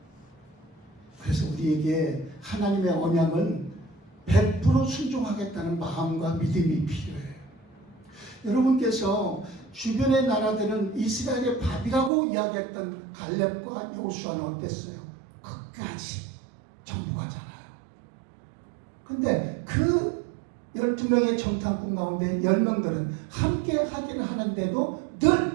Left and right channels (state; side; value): drops out; left; at 12.1 s